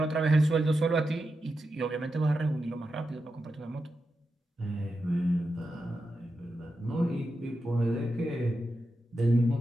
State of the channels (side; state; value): both; normal; correlation 0.89